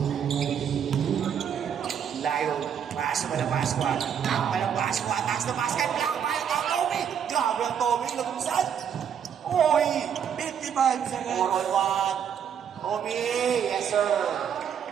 Layo. Pass mo na Pasqua. Takpa ng Pasqua. Taas na basket. Black tayo ng Tommy. Grabe ang Tommy. Lagumsan. Oy. 55 seconds. 4 on 1. Tommy. Yes, sir.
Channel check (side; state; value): left; quieter; 8.2 dB